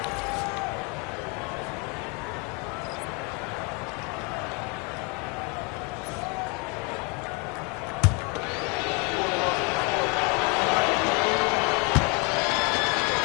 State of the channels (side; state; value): right; quieter; 29.5 dB